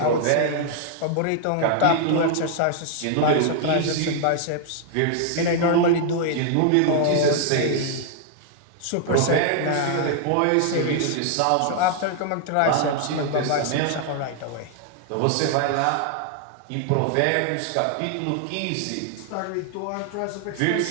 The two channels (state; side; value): different; both; correlation 0.00